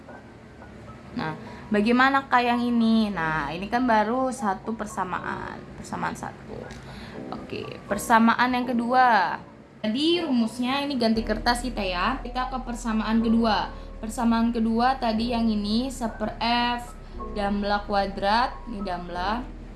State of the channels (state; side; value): identical; both; correlation 1.00